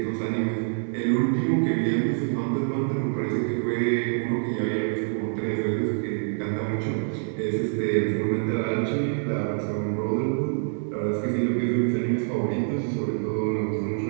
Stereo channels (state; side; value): silent; left; 61 dB below the other